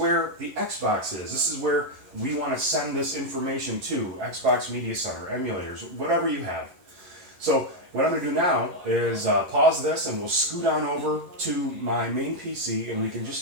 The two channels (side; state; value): left; late; 11 ms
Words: the Xbox is. This is where we want to send this information to Xbox Media Center, emulators, whatever you have. So what I'm going to do now is pause this and we'll scoot on over to my main PC and we can just